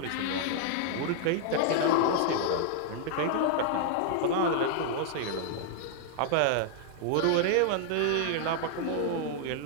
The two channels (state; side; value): different; both; correlation -0.01